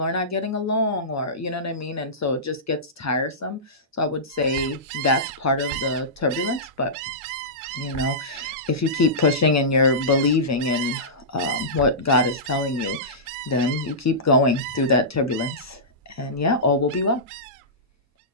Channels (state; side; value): normal; both; correlation -0.17